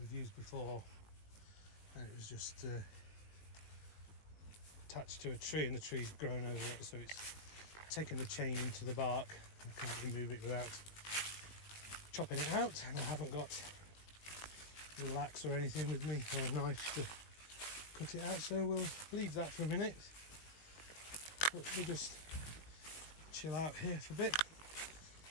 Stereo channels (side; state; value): right; late; 19 ms